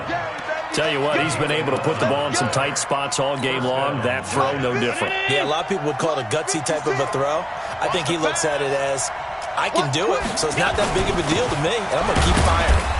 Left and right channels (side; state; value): both; identical; correlation 1.00